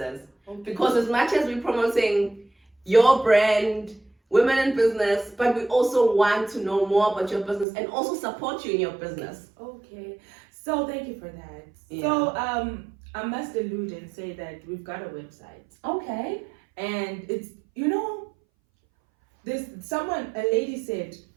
Because as much as we're promoting your brand, women in business, but we also want to know more about your business and also support you in your business. Okay, so thank you for that. Yeah. So I must allude and say that we've got a website. Okay. And it's, you know, there's a lady said,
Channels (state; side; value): drops out; left; at 7.7 s